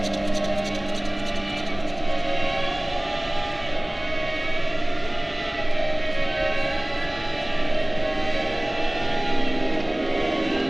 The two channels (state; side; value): noise; right; hum, 25 dB below the sound